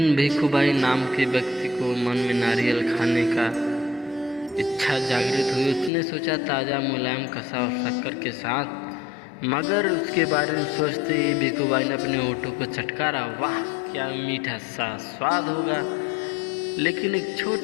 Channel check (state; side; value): drops out; right; at 5.9 s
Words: भिखूबाई नाम के व्यक्ति को मन में नारियल खाने का इच्छा जागृत हुई। उसने सोचा ताज़ा मुलायम कसा और शक्कर के साथ, मगर उसके बारे में सोचते ही भिखूबाई ने अपने होठों को चटकारा। वाह, क्या मीठा सा स्वाद होगा। लेकिन एक